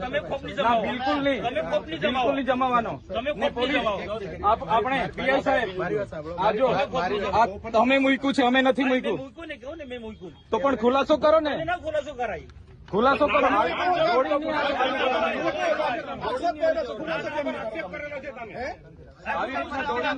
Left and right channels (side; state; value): both; identical; correlation 1.00